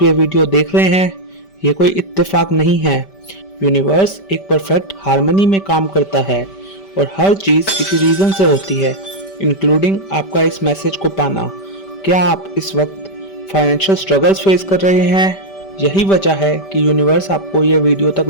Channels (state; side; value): late; right; 5.1 ms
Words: ये वीडियो देख रहे हैं? ये कोई इत्तेफाक नहीं है। यूनिवर्स एक परफेक्ट हार्मनी में काम करता है और हर चीज़ किसी रीज़न से होती है, इंक्लूडिंग आपका इस मैसेज को पाना। क्या आप इस वक्त फाइनेंशियल स्ट्रगल्स फेस कर रहे हैं? यही वजह है कि यूनिवर्स आपको ये वीडियो तक